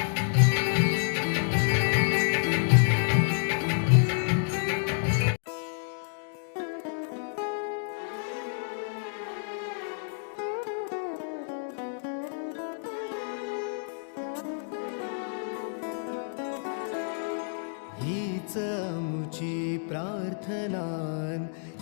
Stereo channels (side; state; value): right; silent; digital silence